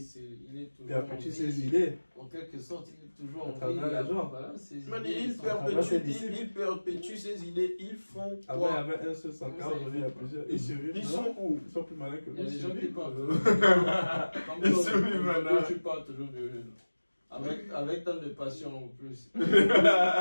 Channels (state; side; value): inverted; both; correlation -1.00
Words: il est toujours Il a perdu en ses vie. idées. En quelque sorte, il est toujours À en vie. travers les gens. Voilà, ses Man, idées il sont- perpétue ses idées. Ils font Avant, il y quoi? avait un seul Sankara, aujourd'hui, il y a plusieurs. Ils survivent. Ils non? sont où? Ils sont plus malins que Il nous. y a des ils gens qui survivent. parlent. Comme Ils toi, sont humains, aujourd'hui, là. tu parles toujours de avec tant de passion en plus.